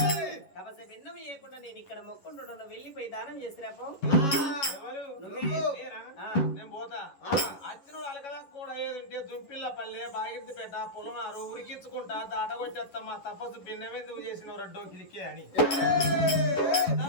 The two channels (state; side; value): late; right; 11 ms